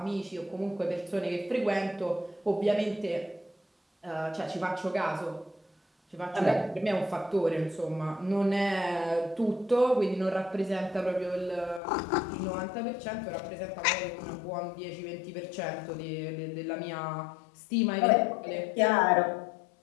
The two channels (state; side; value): drops out; right; at 11.8 s